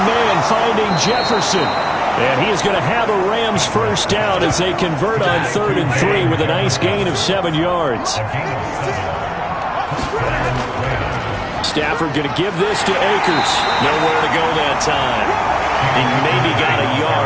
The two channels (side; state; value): both; identical; correlation 1.00